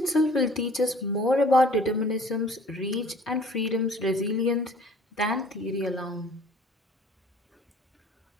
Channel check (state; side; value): normal; both; correlation 0.51